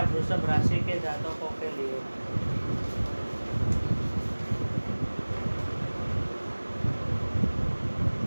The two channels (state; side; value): inverted; both; correlation -1.00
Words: वृषभ राशि के जातकों के लिए।